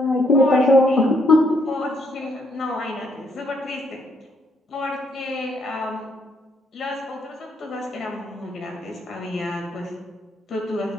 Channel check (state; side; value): normal; both; correlation 0.72